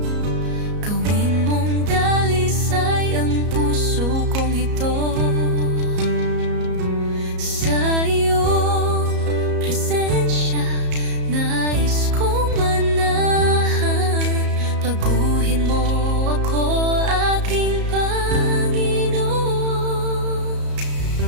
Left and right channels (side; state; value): left; late; 34 ms